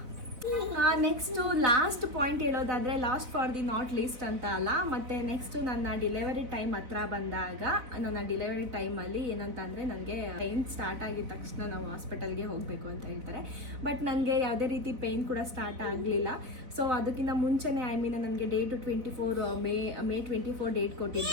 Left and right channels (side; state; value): left; late; 4.0 ms